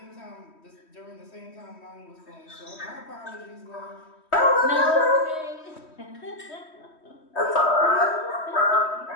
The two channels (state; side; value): late; right; 3.1 ms